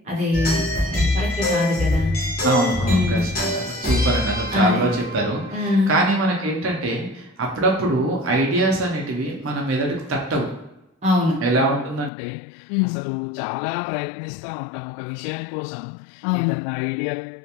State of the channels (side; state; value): right; drops out; at 12.1 s